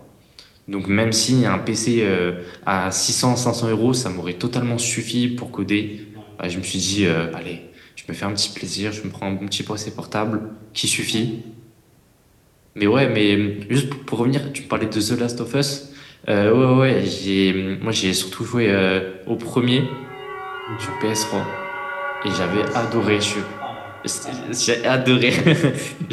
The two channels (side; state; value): both; identical; correlation 1.00